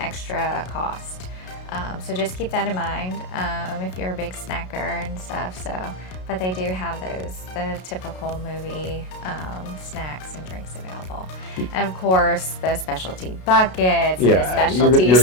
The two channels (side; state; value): right; late; 33 ms